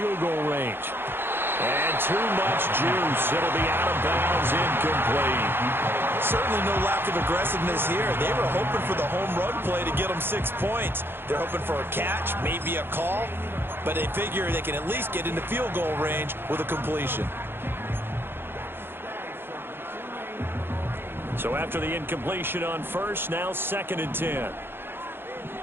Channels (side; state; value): left; late; 0.10 ms